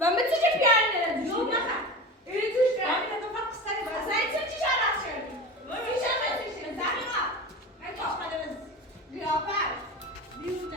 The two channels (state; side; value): normal; both; correlation 0.30